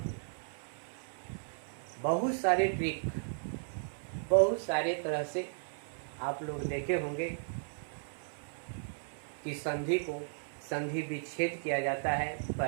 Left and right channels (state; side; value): silent; left; 54 dB below the other